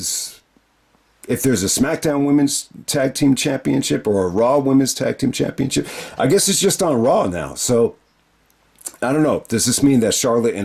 a SmackDown Women's Tag Team Championship or a Raw Women's Tag Team Championship. I guess it's just on Raw now. So I don't know. Does this mean that Charlotte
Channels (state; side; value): identical; both; correlation 1.00